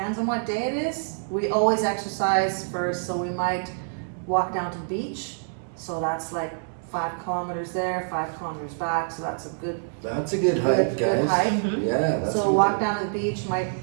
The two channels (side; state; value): left; silent; digital silence